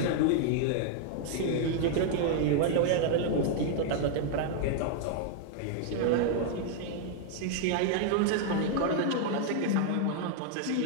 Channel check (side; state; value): both; different; correlation 0.00